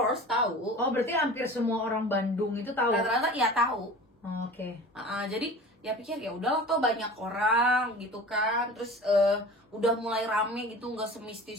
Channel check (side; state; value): both; normal; correlation 0.39